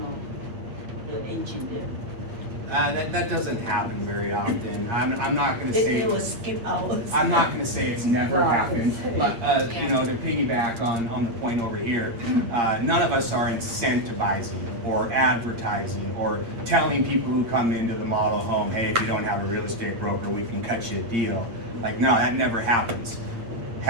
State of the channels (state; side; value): late; left; 8.7 ms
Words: the agent there. That doesn't happen very often. I'm not gonna say. They will skip hours. I'm not gonna say it's never Right. happened, but, to piggyback on the point over here, none of us are incentivizing or advertising or telling people who come into the model home, hey, if you don't have a real estate broker, we can cut you a deal. Like, no, that never happens.